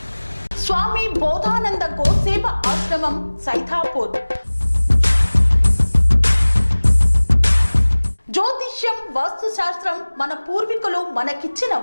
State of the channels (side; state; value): both; inverted; correlation -1.00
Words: స్వామి బోధానంద గోసేవ ఆశ్రమం సైథాపూర్. జ్యోతిష్యం, వాస్తుశాస్త్రం మన పూర్వీకులు మనకిచ్చిన